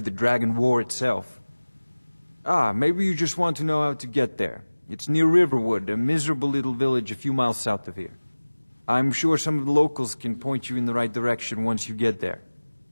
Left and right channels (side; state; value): both; inverted; correlation -1.00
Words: the Dragon War itself. Ah, maybe you just want to know how to get there. It's near Riverwood, a miserable little village a few miles south of here. I'm sure some of the locals can point you in the right direction once you get there.